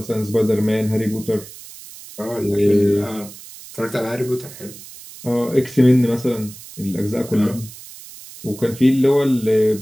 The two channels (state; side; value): noise; right; hiss, 17 dB below the sound